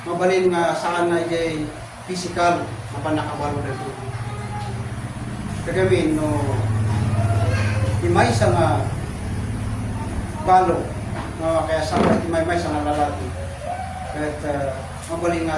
mabalin nga saan na jay physical mapanakabalo na ito. Kagamin no imay sa nga balo no, kaya sa imay sa nga lalaki. Kahit mabaling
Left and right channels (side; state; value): both; identical; correlation 1.00